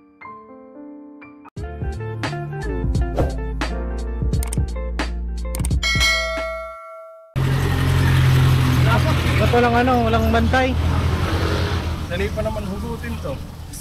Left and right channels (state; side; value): identical; both; correlation 1.00